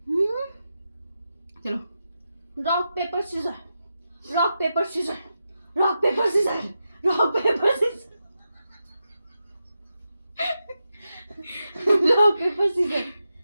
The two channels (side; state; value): both; inverted; correlation -0.88